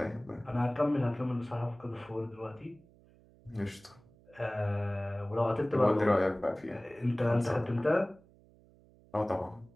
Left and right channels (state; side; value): noise; right; hum, 27 dB below the sound